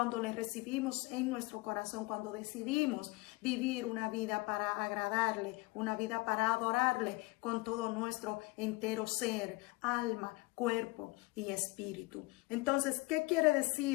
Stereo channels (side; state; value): right; quieter; 23.1 dB